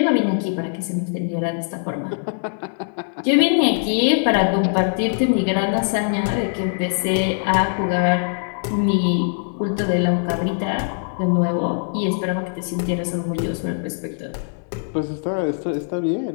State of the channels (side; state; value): right; silent; 64 dB below the other